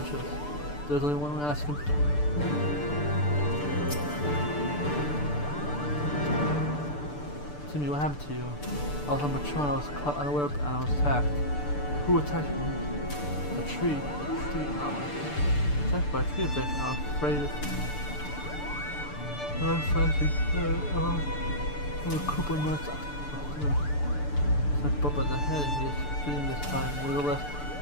There's only one way to ask him. Timmy, what happened to you? I was on patrol and I was caught unaware and I was attacked. Who attacked me? A tree. Attacked by a tree bitch. I'm afraid of... I'm fighting. I'm a Koopa nuts. It's a bump on the head and he is feeding this time. Nevertheless,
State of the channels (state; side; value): late; right; 6.8 ms